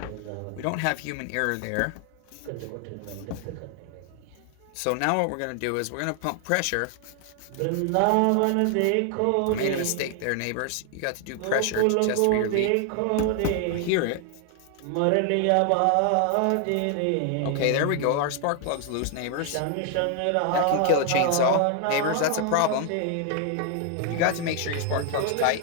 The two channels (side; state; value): both; different; correlation 0.00